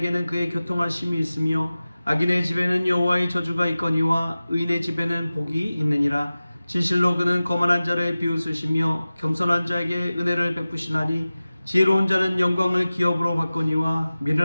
그의 교통하심이 있으며 악인의 집에는 여호와의 저주가 있거니와 의인의 집에는 복이 있느니라. 진실로 그는 거만한 자를 비웃으시며 겸손한 자에게 은혜를 베푸시나니 지혜로운 자는 영광을 기업으로 받거니와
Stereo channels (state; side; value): inverted; both; correlation -0.96